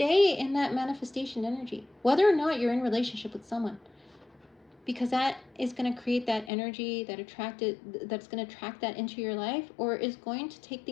in that manifestation energy, whether or not you're in relationship with someone, because that is going to create that energy that's going to attract that into your life, or is going to take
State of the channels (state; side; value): drops out; right; at 6.5 s